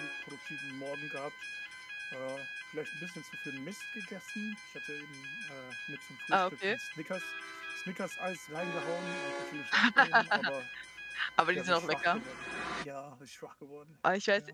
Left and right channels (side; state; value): both; identical; correlation 1.00